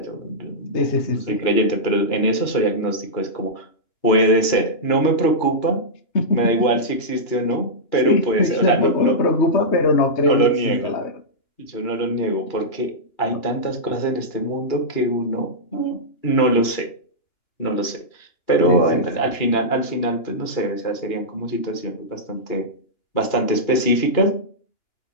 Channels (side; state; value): right; late; 2.9 ms